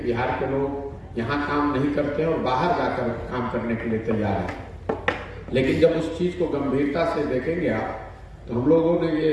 के लोग यहाँ काम नहीं करते और बाहर जाकर काम करने के लिए तैयार हैं। लेकिन जब उस चीज़ को गंभीरता से देखेंगे आप, तो हम लोगों ने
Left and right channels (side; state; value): both; identical; correlation 1.00